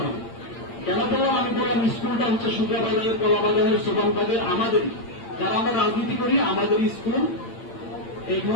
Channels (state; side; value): late; right; 8.8 ms